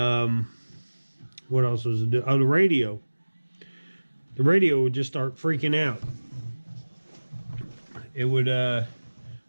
what else was it? Oh, the radio. The radio would just start freaking out. It would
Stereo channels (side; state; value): both; inverted; correlation -1.00